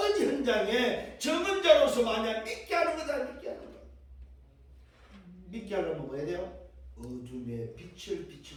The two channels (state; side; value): identical; both; correlation 1.00